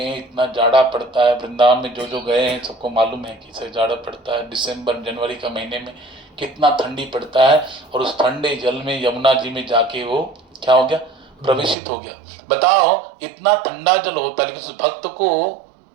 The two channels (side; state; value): left; drops out; at 11.8 s